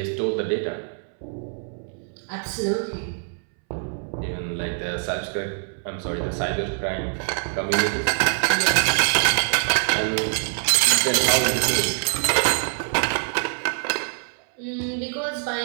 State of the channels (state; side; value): silent; left; 63 dB below the other